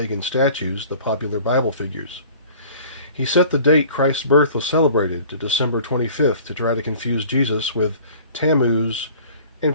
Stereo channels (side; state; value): both; inverted; correlation -0.48